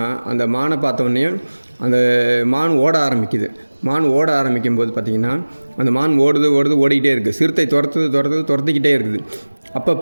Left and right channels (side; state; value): both; inverted; correlation -1.00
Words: அந்த மானை பார்த்தோன்னே அந்த மான் ஓட ஆரம்பிக்குது. மான் ஓட ஆரம்பிக்கும் போது பார்த்திங்கன்னா அந்த மான் ஓடிக்கிட்டே இருக்குது. சிறுத்தை துரத்திக்கிட்டே இருக்குது. அப்போ